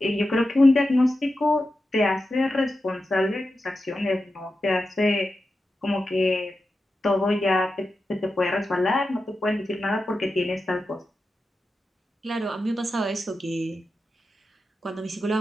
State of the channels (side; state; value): both; normal; correlation 0.91